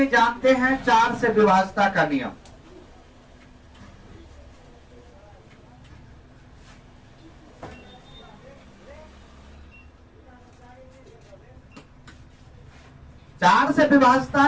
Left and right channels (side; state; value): both; identical; correlation 1.00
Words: जानते हैं 4 से विभाज्यता का नियम। चार से विभाज्यता